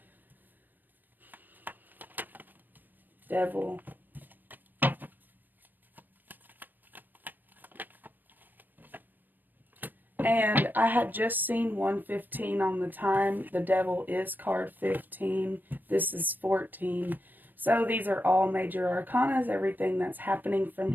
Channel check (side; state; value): left; late; 0.088 ms